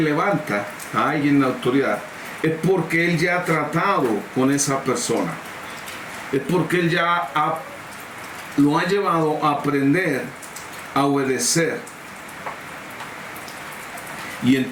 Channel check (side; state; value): both; identical; correlation 1.00